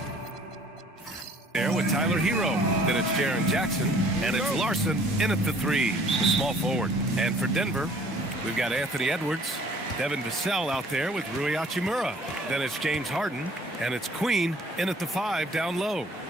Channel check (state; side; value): normal; both; correlation 0.56